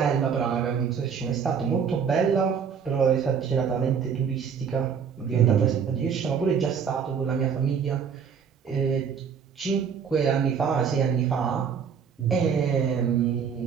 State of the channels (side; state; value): left; quieter; 6.9 dB